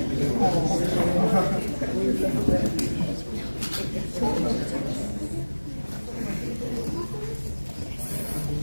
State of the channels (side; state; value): both; inverted; correlation -1.00